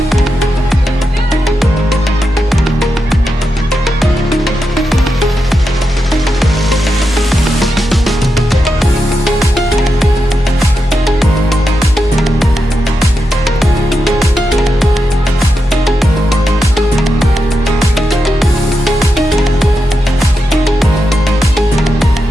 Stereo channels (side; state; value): both; normal; correlation 0.87